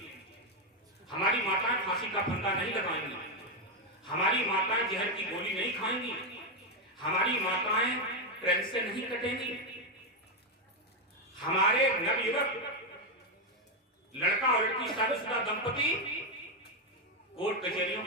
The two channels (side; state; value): both; normal; correlation 0.05